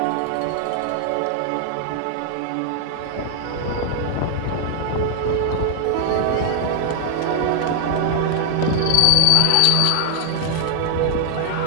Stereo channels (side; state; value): both; different; correlation 0.00